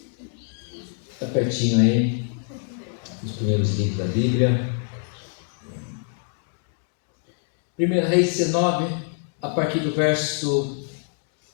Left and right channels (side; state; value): right; silent; 58 dB below the other